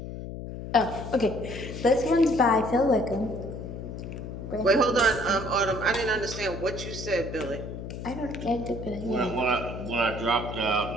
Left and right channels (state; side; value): noise; left; hum, 8 dB below the sound